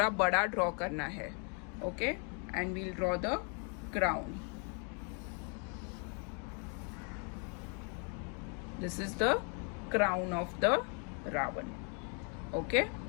बड़ा ड्रॉ करना है. Okay, and we'll draw the crown. This is the crown of the Ravan. Okay,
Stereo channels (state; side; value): quieter; right; 38.4 dB